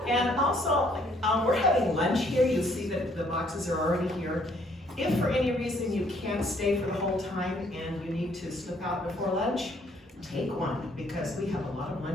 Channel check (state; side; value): normal; both; correlation 0.65